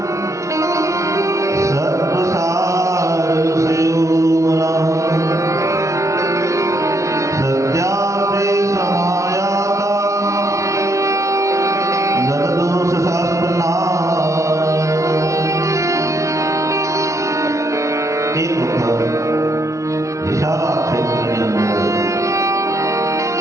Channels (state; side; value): late; left; 0.15 ms